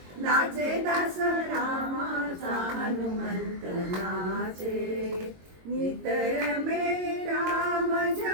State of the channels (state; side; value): late; left; 22 ms